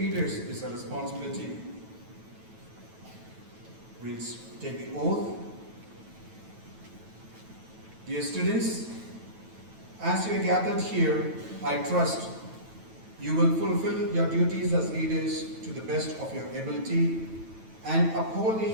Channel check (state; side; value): late; left; 9.2 ms